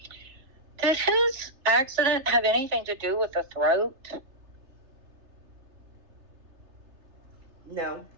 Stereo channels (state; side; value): late; left; 3.3 ms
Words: Did his accident have anything to do with the throat? No.